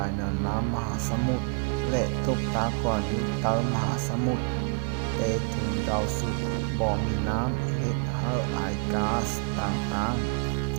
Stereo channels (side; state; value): left; quieter; 38.7 dB